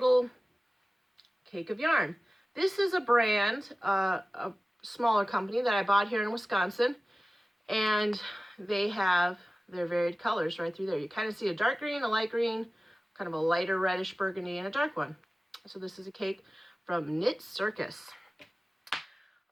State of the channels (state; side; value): normal; both; correlation 0.96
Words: cake of yarn. This is a brand, a smaller company that I bought here in Wisconsin, and they have their varied colors right through there. You kind of see a dark green, a light green, kind of a lighter reddish burgundy, and a dark one. So this is a cake from Knit Circus.